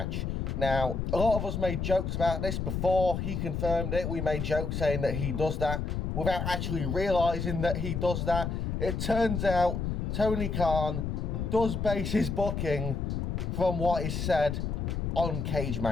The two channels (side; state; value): left; noise; rumble, 2 dB below the sound